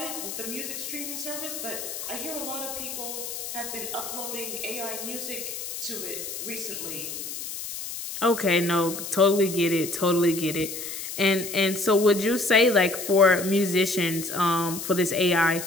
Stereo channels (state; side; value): noise; left; hiss, 7 dB below the sound